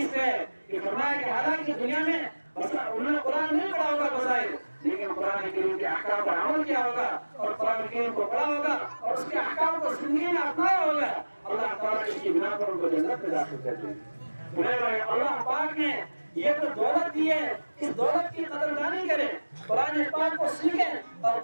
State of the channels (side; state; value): both; inverted; correlation -1.00